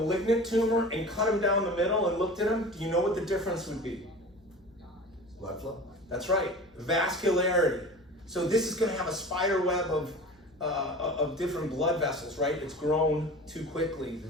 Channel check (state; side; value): normal; both; correlation 0.37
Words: tumor and cut them down the middle and looked at them, do you know what the difference would be? Blood flow? That's right, vascularity. So this is going to have a spider web of different blood vessels, right? It's grown too quickly.